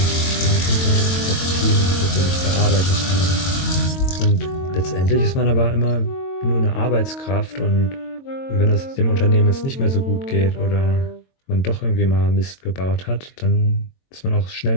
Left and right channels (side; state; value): right; late; 22 ms